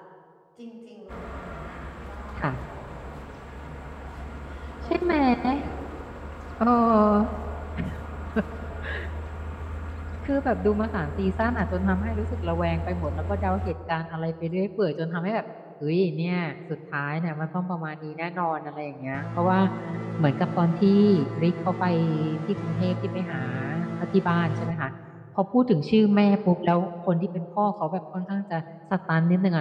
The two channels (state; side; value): identical; both; correlation 1.00